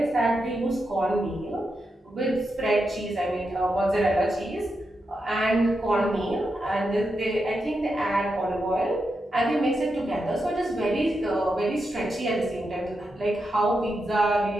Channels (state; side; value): normal; both; correlation 0.86